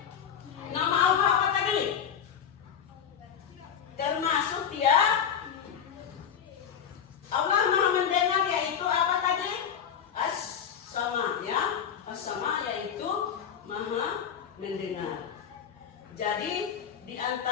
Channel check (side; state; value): right; quieter; 8.1 dB